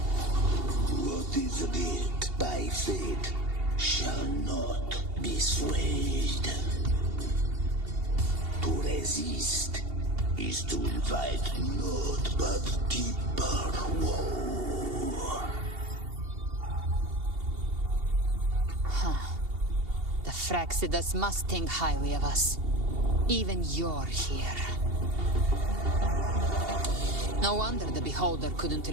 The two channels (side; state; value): left; late; 2.8 ms